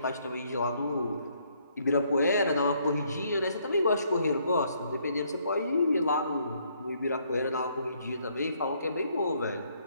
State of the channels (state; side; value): inverted; both; correlation -0.69